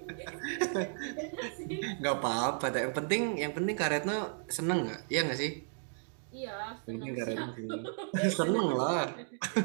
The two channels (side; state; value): left; silent; digital silence